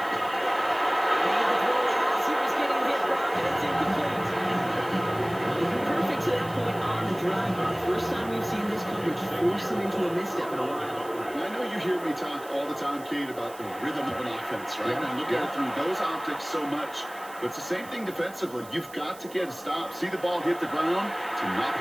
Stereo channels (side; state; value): right; noise; hiss, 20 dB below the sound